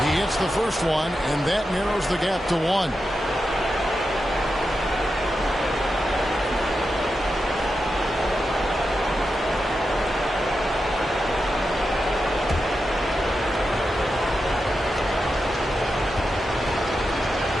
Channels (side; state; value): both; normal; correlation 0.89